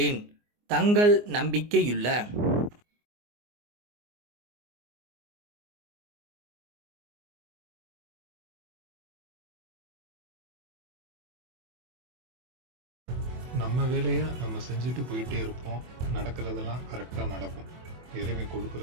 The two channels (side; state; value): left; late; 24 ms